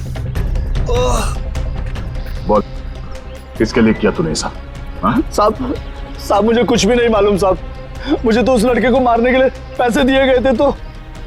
बोल, किसके लिए किया तूने ऐसा? साहब मुझे कुछ भी नहीं मालूम साहब। मुझे तो उस लड़के को मारने के लिए पैसे दिए गए थे तो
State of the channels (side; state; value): both; identical; correlation 1.00